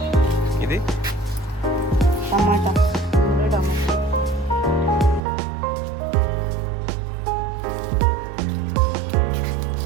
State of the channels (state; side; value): drops out; left; at 5.2 s